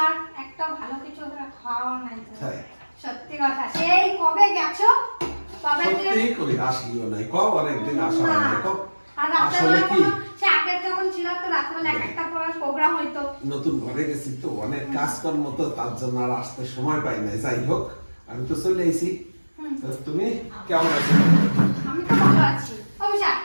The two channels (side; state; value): both; inverted; correlation -1.00